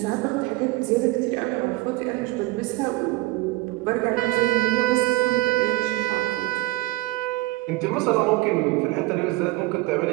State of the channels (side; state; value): left; quieter; 20.0 dB